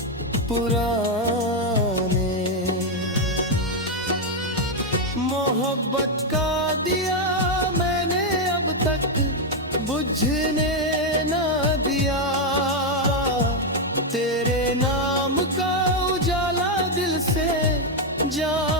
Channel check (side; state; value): both; normal; correlation 0.02